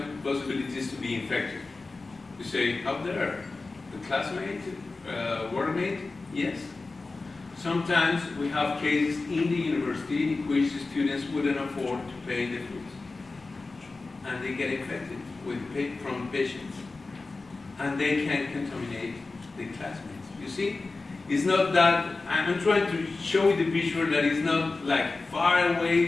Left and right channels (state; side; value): quieter; right; 3.6 dB